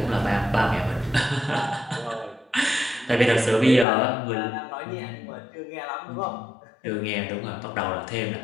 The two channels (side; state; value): right; drops out; at 3.9 s